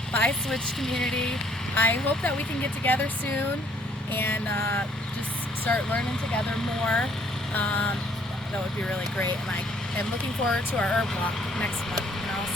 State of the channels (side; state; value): both; normal; correlation 0.63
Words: Bye, Switch community. I hope that we can get together soon and just start learning together more. That would be really great, and I am looking forward to our herb walk next month, and I'll